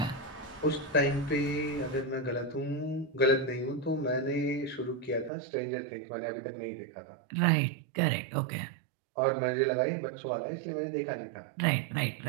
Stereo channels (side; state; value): left; drops out; at 5.3 s